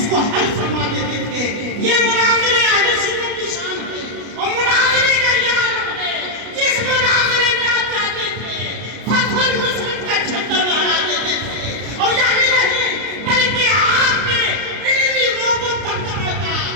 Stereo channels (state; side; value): late; left; 32 ms